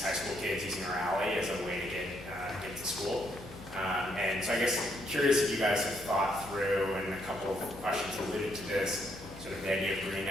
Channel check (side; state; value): left; noise; hum, 17 dB below the sound